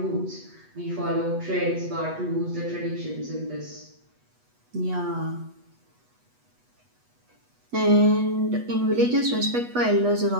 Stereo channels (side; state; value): left; late; 8.2 ms